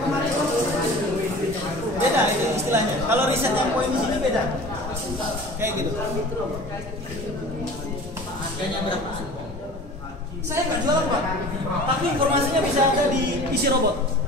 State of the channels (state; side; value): normal; both; correlation 0.41